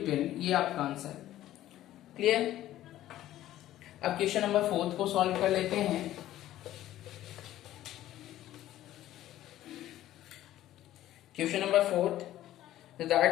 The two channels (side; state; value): right; quieter; 13.7 dB